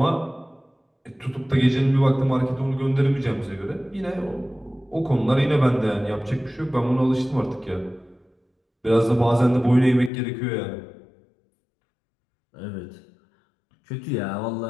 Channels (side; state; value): right; drops out; at 10.1 s